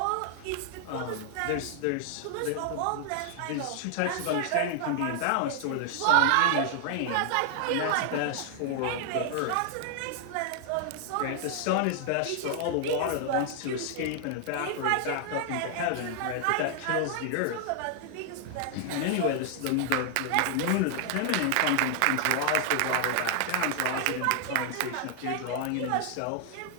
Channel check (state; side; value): different; both; correlation 0.00